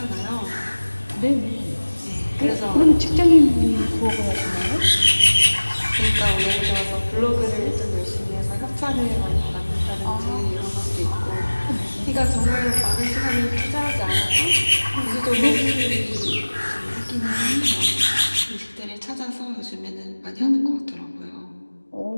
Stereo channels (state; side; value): inverted; both; correlation -1.00